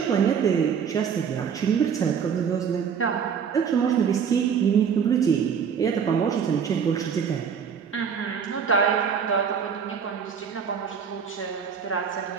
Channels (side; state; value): left; quieter; 7.1 dB